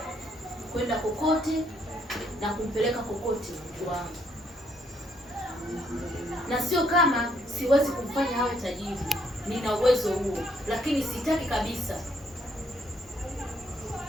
kwenda kokote na kumpeleka kokote mtu wangu. Na sio kama siwezi kumfanya awe tajiri. Nina uwezo huo, lakini sitaki kabisa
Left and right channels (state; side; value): normal; both; correlation 0.70